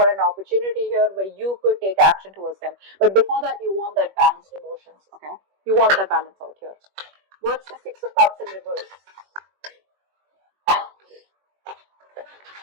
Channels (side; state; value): left; late; 21 ms